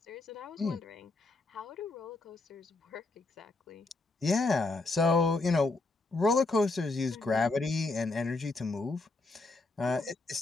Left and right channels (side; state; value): right; quieter; 3.4 dB